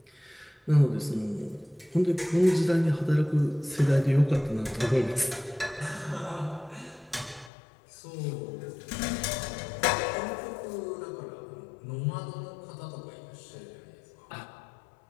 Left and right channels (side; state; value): right; drops out; at 7.5 s